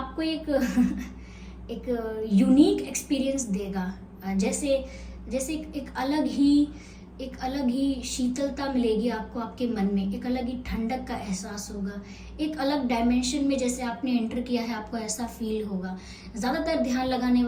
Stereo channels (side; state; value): both; identical; correlation 1.00